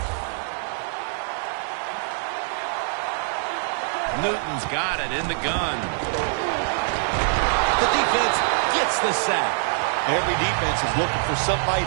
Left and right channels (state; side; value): silent; left; 62 dB below the other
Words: Newton's got it in the gun. The defense gets the sack. Every defense is looking for somebody